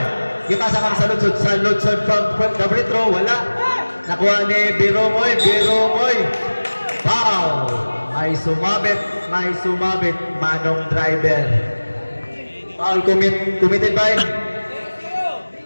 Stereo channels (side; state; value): both; inverted; correlation -1.00